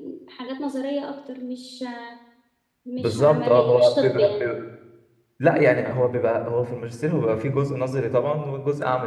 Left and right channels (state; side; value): identical; both; correlation 1.00